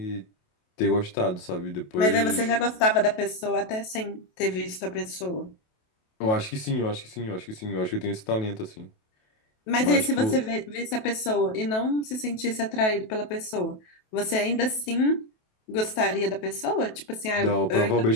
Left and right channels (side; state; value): right; late; 28 ms